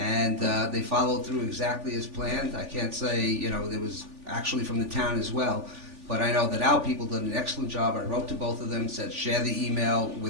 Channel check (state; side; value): late; left; 3.4 ms